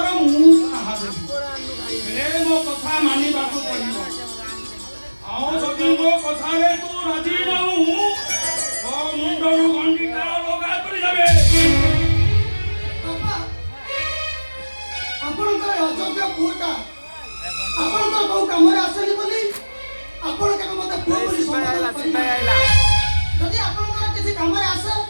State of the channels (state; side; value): inverted; both; correlation -1.00